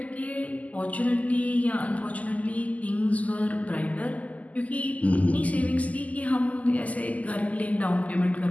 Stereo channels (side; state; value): right; late; 0.074 ms